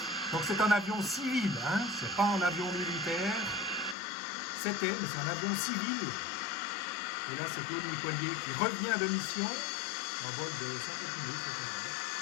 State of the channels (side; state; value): right; drops out; at 4.0 s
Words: Donc c'est un avion civil, hein, c'est pas un avion militaire. C'était, mais c'est un avion civil. Et là, c'est Claude Nicollier qui revient de mission, en vol de 50 minutes.